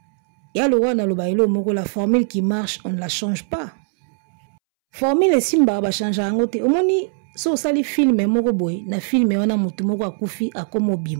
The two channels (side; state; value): left; silent; 66 dB below the other